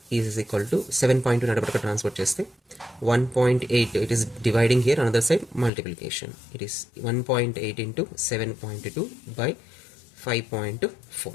is equal to 7.2 నడపడక transfer చేస్తే 1.8, it is dividing here, another side multiplication, it is 1.8 into 7.2 by 5.4.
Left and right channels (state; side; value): drops out; right; at 5.7 s